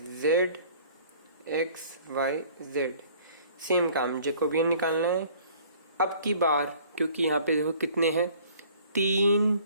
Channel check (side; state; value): both; inverted; correlation -0.53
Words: z x y z. Same काम, जैकोबियन निकालना है. अब की बार क्योंकि यहाँ पे देखो कितने हैं, तीन